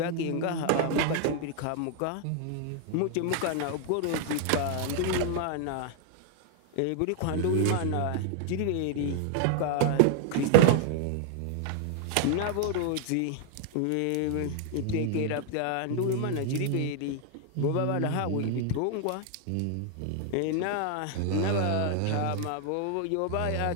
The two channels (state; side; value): different; both; correlation 0.00